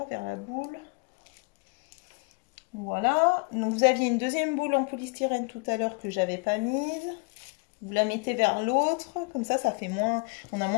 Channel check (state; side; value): quieter; right; 32.9 dB